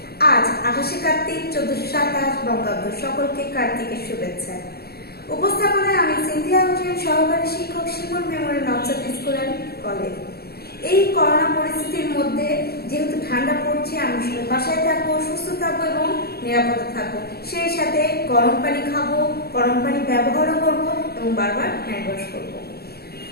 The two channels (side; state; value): right; late; 0.46 ms